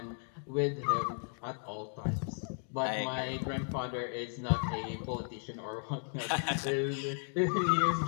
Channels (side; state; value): right; silent; 55 dB below the other